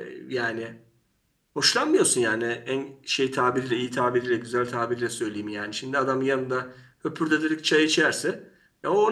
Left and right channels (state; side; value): identical; both; correlation 1.00